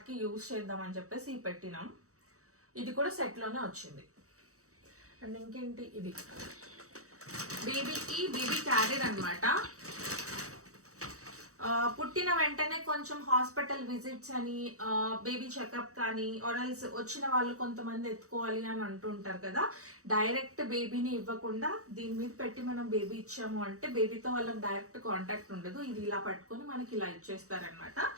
యూజ్ చేద్దామని చెప్పేసి ఇవి పెట్టినాం. ఇది కూడా సెట్లోనే వచ్చింది. అండ్ ఇంకేంటి, ఇది బేబీ క్యారియర్ అనమాట. పుట్టిన వెంటనే కొంచెం హాస్పిటల్ విజిట్స్ అని, బేబీ చెకప్ కానీ ఆర్ఎల్స్ వచ్చిన వాళ్ళు కొంతమంది ఎత్తుకోవాలి అని అంటుంటారు కదా. డైరెక్ట్ బేబీని ఇవ్వకుండా దీని మీద పెట్టి మనం బేబీ ఇచ్చాము అంటే బేబీతో వాళ్ళకి డైరెక్ట్ కాంటాక్ట్ ఉండదు. ఇది ఇలా పట్టుకొని మనకి ఇలా ఇచ్చేస్తారనమాట.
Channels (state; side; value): late; left; 0.65 ms